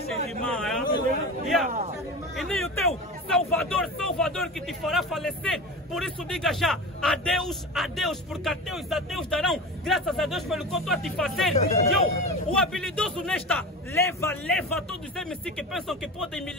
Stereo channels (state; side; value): normal; both; correlation 0.28